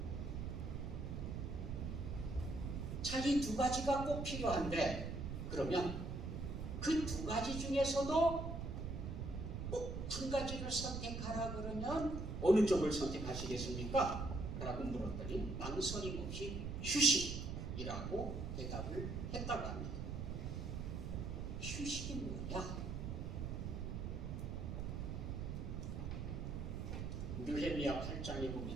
자, 이 두 가지가 꼭 필요한데 그러면 그 두 가지 중에서도 꼭 한 가지를 선택하라 그러면 어느 쪽을 선택하시겠습니까? 라고 물었더니 망설임 없이 휴식이라고 대답을 했다고 합니다. 휴식이 뭐냐? 느헤미야 8장에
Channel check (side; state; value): right; noise; rumble, 4 dB below the sound